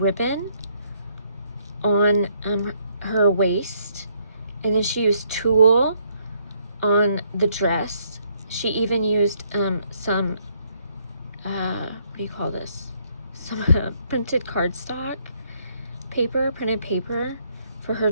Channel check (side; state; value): both; inverted; correlation -0.70